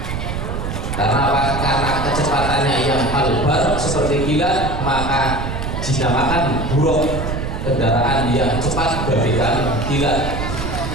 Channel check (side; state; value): right; noise; rumble, 4 dB below the sound